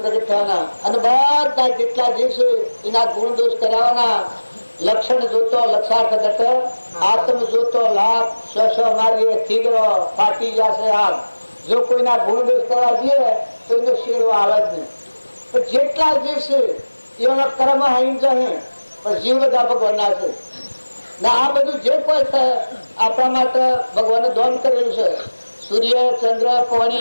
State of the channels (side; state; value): both; inverted; correlation -1.00